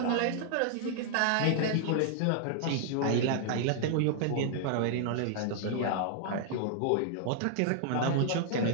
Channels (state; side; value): different; both; correlation -0.01